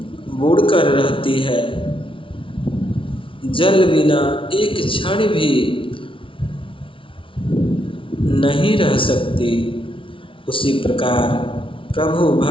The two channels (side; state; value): right; late; 0.25 ms